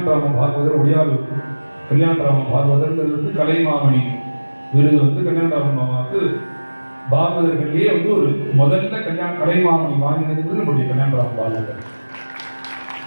பாகவதர், ஒடியாலு கல்யாணராம பாகவதர்ங்கிறது கலைமாமணி விருது வந்து கல்யாணராம மாமாவுக்கு பாகவதர்கள்லேயே வந்து ஒரு முதல்ல கலைமாமணி வாங்கினது நம்முடைய கல்யாணராம பாகவதர்.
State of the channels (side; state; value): both; inverted; correlation -1.00